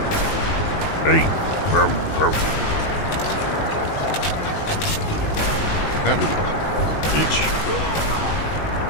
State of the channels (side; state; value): right; late; 19 ms